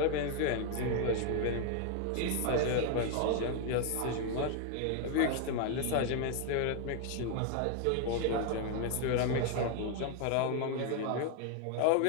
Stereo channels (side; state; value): both; different; correlation 0.00